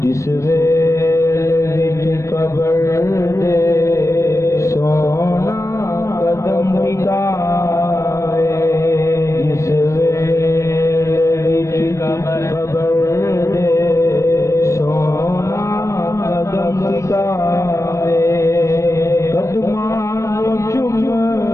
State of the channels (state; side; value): late; right; 0.15 ms